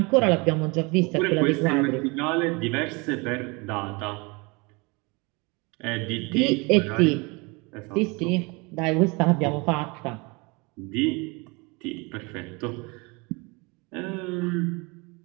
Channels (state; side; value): quieter; left; 27.9 dB